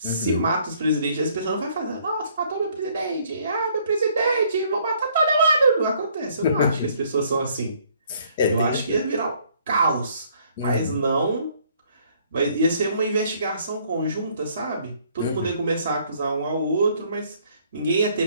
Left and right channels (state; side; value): inverted; both; correlation -0.63